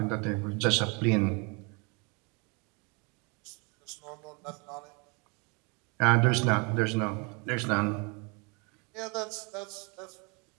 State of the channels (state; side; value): quieter; left; 32.0 dB